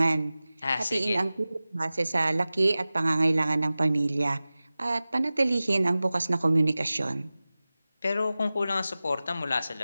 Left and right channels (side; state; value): both; inverted; correlation -0.97